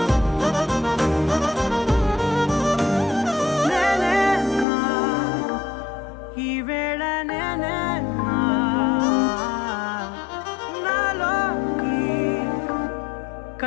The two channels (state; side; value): drops out; right; at 4.7 s